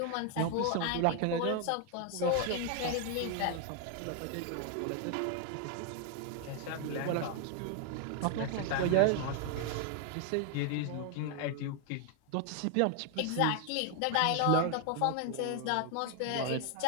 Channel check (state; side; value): different; both; correlation 0.00